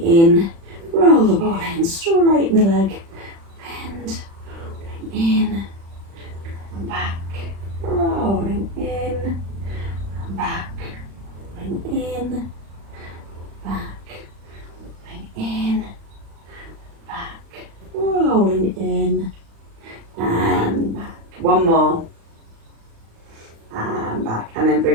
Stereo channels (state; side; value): late; left; 36 ms